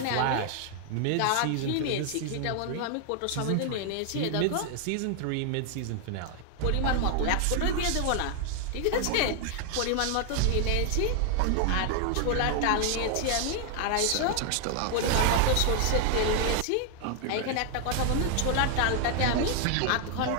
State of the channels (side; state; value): both; different; correlation 0.00